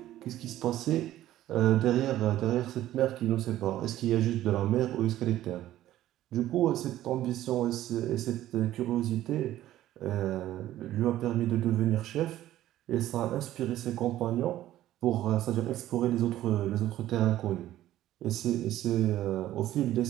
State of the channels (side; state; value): left; quieter; 13.8 dB